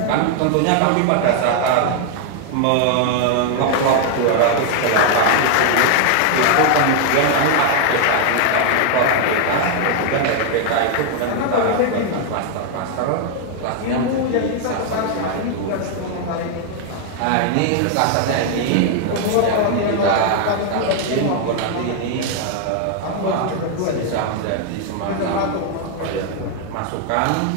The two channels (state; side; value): different; both; correlation 0.00